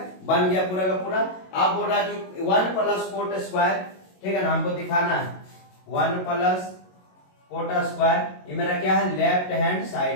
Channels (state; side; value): late; right; 22 ms